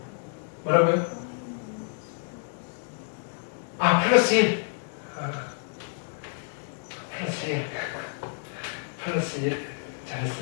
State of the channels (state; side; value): silent; right; digital silence